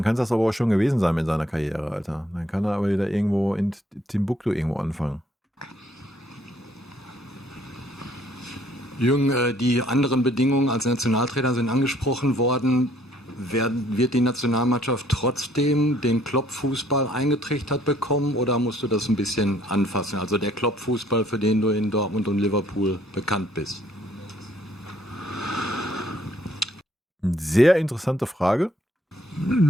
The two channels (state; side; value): normal; both; correlation 0.63